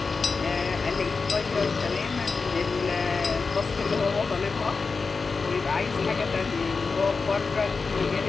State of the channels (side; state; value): right; quieter; 4.6 dB